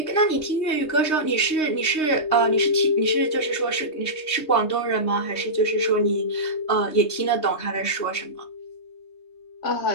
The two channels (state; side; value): late; right; 3.2 ms